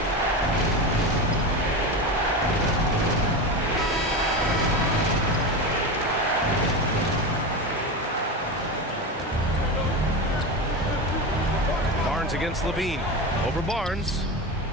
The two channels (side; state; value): both; normal; correlation 0.22